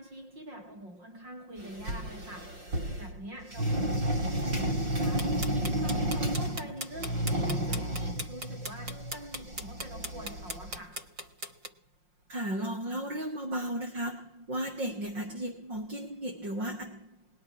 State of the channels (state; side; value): late; left; 5.6 ms